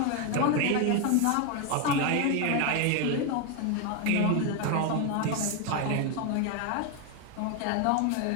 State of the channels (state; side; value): different; both; correlation 0.01